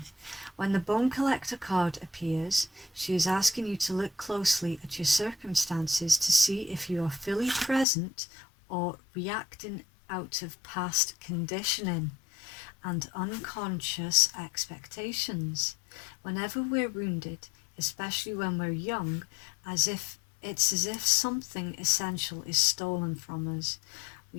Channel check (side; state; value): right; drops out; at 7.9 s